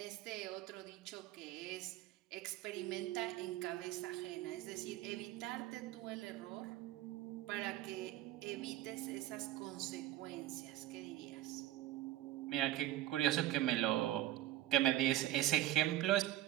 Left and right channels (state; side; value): quieter; left; 14.4 dB